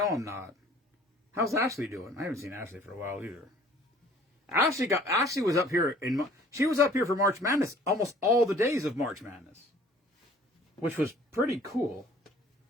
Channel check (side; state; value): both; normal; correlation 0.53